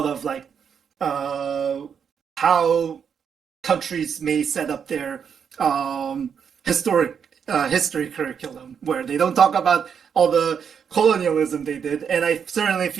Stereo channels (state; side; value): quieter; left; 7.2 dB